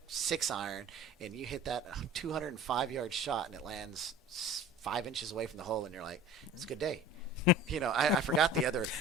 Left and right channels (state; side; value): normal; both; correlation 0.42